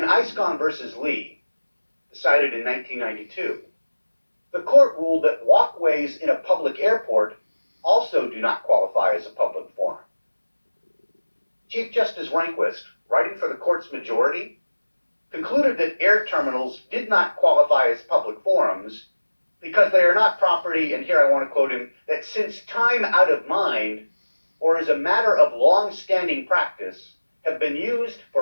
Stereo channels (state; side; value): inverted; both; correlation -1.00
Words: Iscon versus Lee, decided in 1992, the court ruled that walkways in a public airport also do not qualify as a public forum. Chief Justice Rehnquist, writing for the court's majority, concluded that air terminals did not qualify as public forums because they are not property, and here I want to quote him, that since time out of mind, or as a matter of long-standing practice, have been used